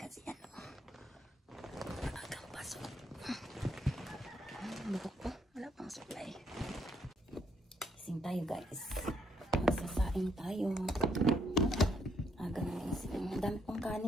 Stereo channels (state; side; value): normal; both; correlation 0.73